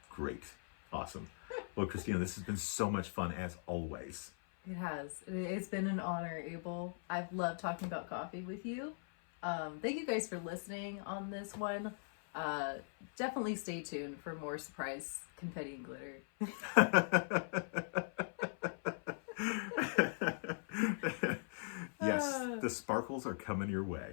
Great. Awesome. Well, Christina, this has been so much fun as always. It has. It's been an honor, Abel. I've loved talking about coffee with you. Thank you guys for listening on this one. Definitely stay tuned for more surprise confetti and glitter. Yes, the sparkles are coming your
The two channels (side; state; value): right; silent; 51 dB below the other